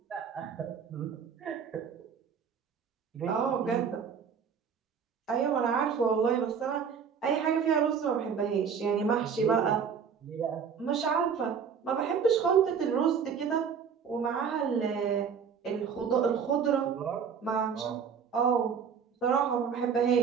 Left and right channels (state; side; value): quieter; left; 6.8 dB